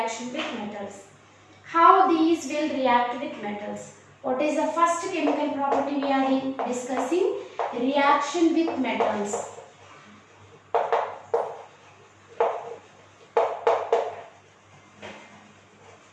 with metals. How these will react with metals? What is the first chemical property we are discussing? Reaction with metals.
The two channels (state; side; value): identical; both; correlation 1.00